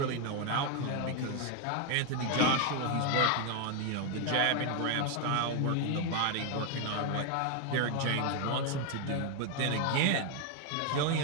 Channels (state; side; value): different; both; correlation 0.01